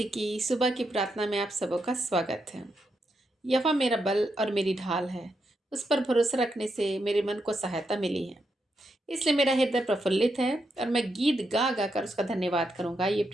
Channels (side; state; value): both; normal; correlation 0.83